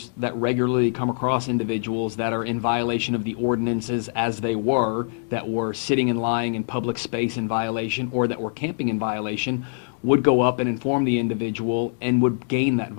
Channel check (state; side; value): silent; right; digital silence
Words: that regularly come across individuals that are in violation of the ordinances as they were, that were sitting and lying in public space in violation, or that were camping in violation, would go up and inform the individual and would gain that